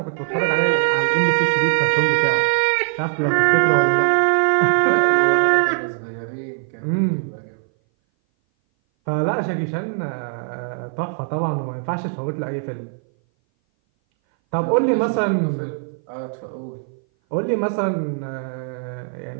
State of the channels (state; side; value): silent; left; 59 dB below the other